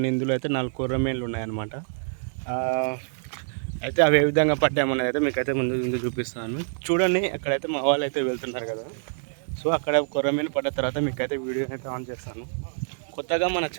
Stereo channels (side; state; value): left; silent; digital silence